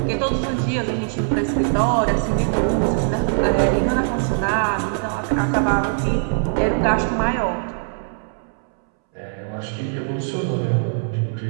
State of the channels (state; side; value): silent; left; 65 dB below the other